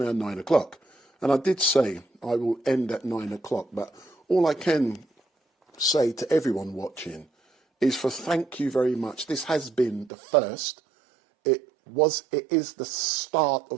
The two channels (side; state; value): left; drops out; at 10.1 s